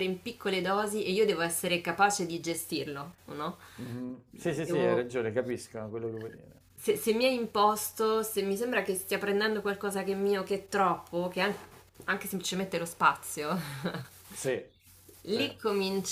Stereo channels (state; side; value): identical; both; correlation 1.00